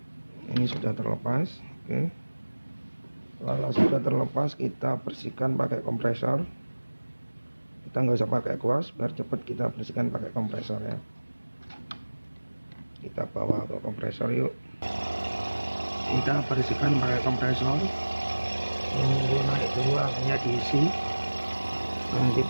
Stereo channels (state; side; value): inverted; both; correlation -1.00